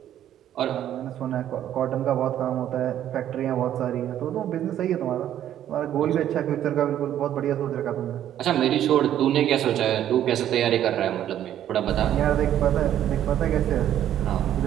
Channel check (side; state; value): left; quieter; 11.2 dB